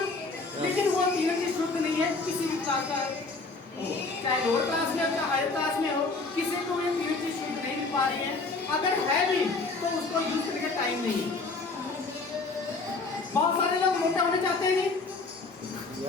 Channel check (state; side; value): quieter; right; 3.8 dB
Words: लेकिन वो तीनों चीज शुद्ध नहीं है किसी भी क्लास का, चाहे लोअर क्लास में हो चाहे हायर क्लास में हो, किसी को ये तीनों चीज शुद्ध नहीं मिल पा रही है। अगर है भी तो उसको यूज करने का टाइम नहीं है। बहुत सारे लोग मोटा होना चाहते हैं,